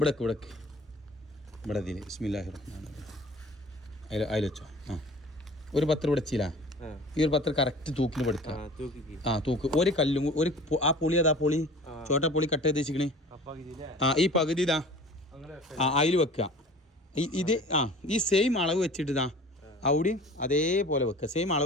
ഇവിടെ ഇതിൽ ബിസ്മില്ലാഹിർ റഹ്മാനിർ റഹീം അതിൽ വെച്ചോ ഒരു പത്രം ഇവിടെ വെച്ചില്ല ഈ ഒരു പത്രം കറക്റ്റ് തൂക്കിന് പഠിക്കാം തൂക്ക് ഒരു കല്ലും ഒരു ആ പൊളി അതാ പൊളി ചോട്ടാ പൊളി കട്ട് ചെയ്ത് വെച്ചിക്കണേ ഈ പകുതി ഇതാ അതിൽ വെക്കുക ഇത് ഈ സെയിം അളവ് വെച്ചിട്ട് ഇതാ അവിടെയും അതേപോലെ വെക്കുക സെയിം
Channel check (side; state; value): both; normal; correlation 0.43